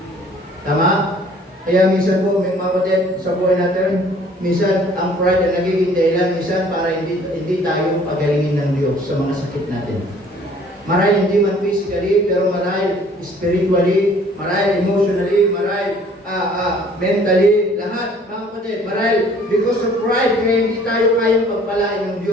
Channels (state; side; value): normal; both; correlation 0.55